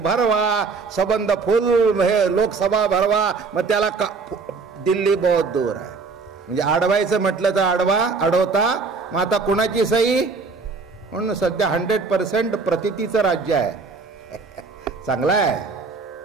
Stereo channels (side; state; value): left; quieter; 4.6 dB